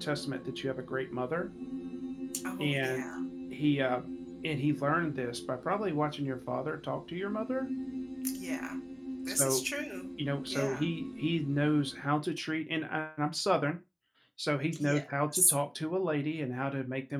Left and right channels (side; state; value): both; identical; correlation 1.00